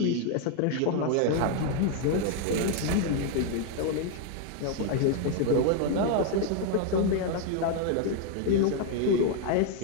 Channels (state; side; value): different; both; correlation 0.00